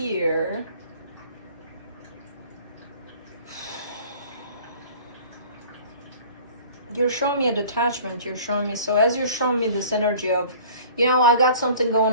You're showing me a detachment. You're showing me, so as you're showing me this energy of, you know, I got something going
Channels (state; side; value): inverted; both; correlation -0.47